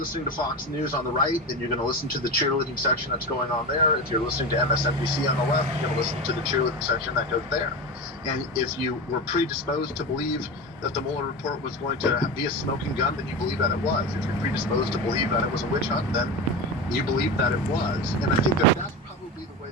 to Fox News on the right, then you're going to listen to the cheerleading section that's going on there. If you're listening to MSNBC on the left, you're going to listen to the cheerleading section that goes there. And if you were predisposed to believe that the Mueller report was going to be a smoking gun, then you believe that it was. If you're predisposed to believe that it was a witch hunt, then you believe that it was. And I think that that's probably the way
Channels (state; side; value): normal; both; correlation 0.23